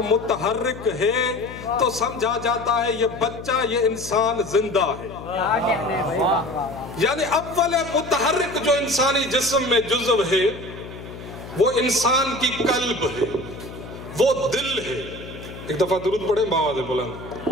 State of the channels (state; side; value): noise; left; hum, 13 dB below the sound